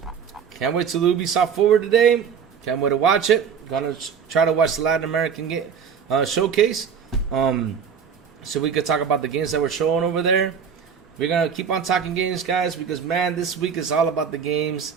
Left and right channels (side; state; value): left; quieter; 7.0 dB